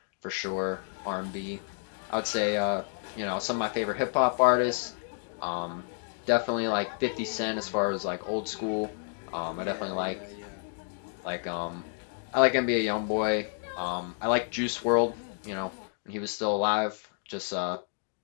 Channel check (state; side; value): silent; right; 58 dB below the other